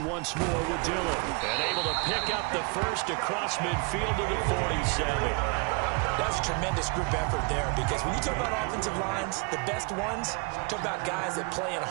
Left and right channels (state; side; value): quieter; left; 32.1 dB